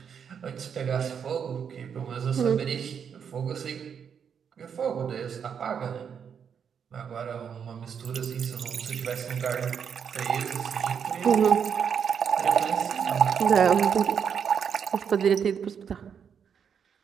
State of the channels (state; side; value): quieter; left; 7.4 dB